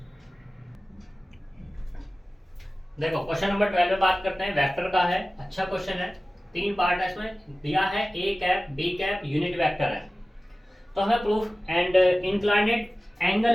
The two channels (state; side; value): normal; both; correlation 0.96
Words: देखो क्वेश्चन नंबर 12 में बात करते हैं, वेक्टर का है, अच्छा क्वेश्चन है, 3 पार्ट है इसमें, दिया है A cap B cap unit vector है, तो हमें प्रूफ एंड इंक्लाइनेड